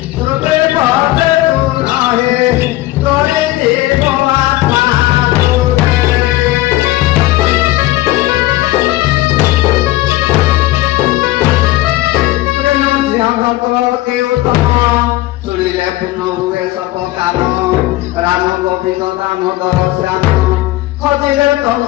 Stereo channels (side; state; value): right; quieter; 17.2 dB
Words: শ্রুতি পদে তু নহে তোরে জীব মাতা শুনিলে পূর্ণ হুয়ে সব কাম রাম গোবিন্দ দামোদর শ্যাম খোঁজিলে তম